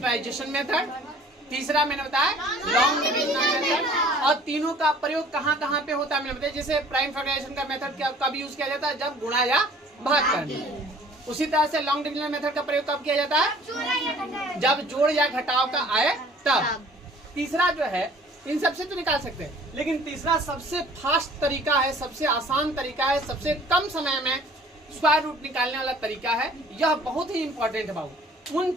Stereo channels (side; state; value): both; normal; correlation 0.52